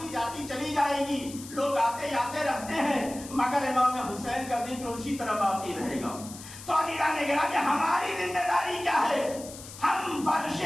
جاتی چلی جائے گی، لوگ آتے جاتے رہتے ہیں مگر امام حسین کا ذکر اسی طرح باقی رہے گا۔ تو عزیزان گرامی، ہماری ذمہ داری کیا ہے؟ ہم فرش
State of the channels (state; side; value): noise; left; hiss, 14 dB below the sound